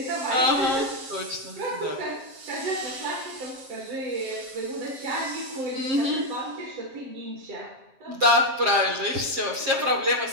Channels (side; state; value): left; late; 7.6 ms